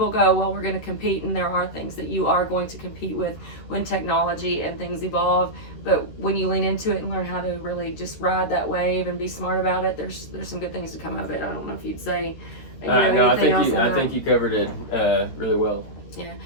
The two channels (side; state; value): right; late; 13 ms